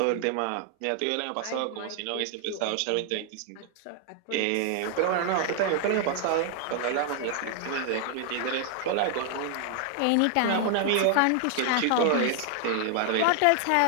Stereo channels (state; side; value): different; both; correlation 0.00